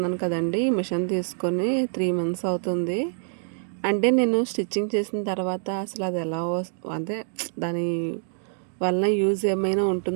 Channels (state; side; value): silent; left; digital silence